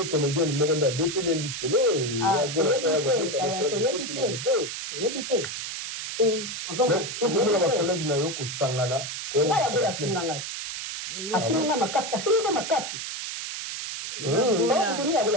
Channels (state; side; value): noise; right; hiss, 6 dB below the sound